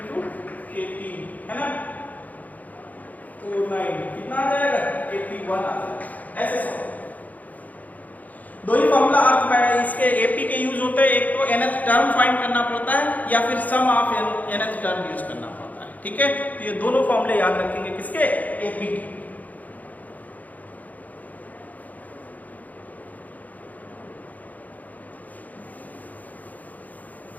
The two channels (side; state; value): right; late; 0.079 ms